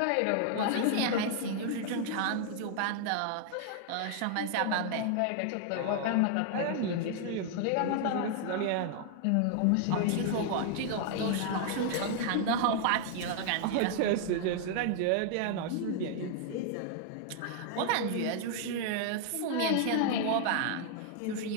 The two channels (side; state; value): both; different; correlation 0.00